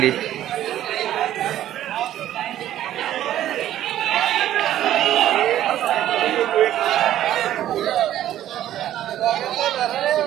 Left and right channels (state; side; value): quieter; left; 12.4 dB